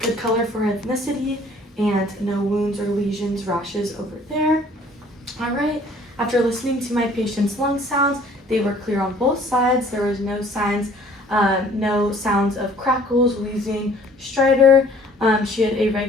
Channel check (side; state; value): both; normal; correlation 0.55